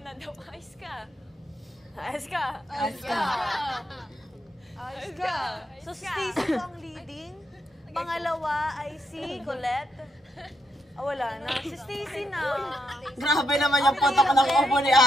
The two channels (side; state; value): both; normal; correlation 0.80